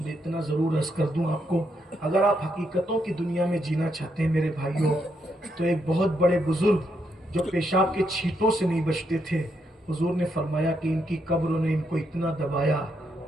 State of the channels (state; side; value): normal; both; correlation 0.78